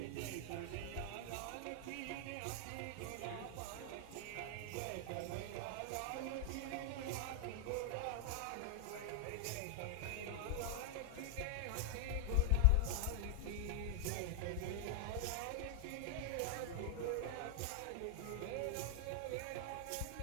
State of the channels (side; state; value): both; different; correlation 0.00